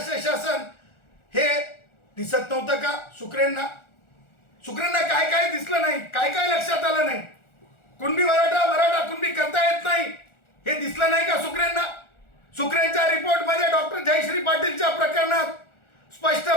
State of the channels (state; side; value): late; right; 1.4 ms